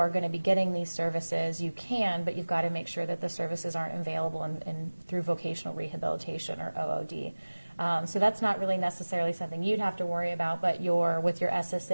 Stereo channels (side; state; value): both; inverted; correlation -1.00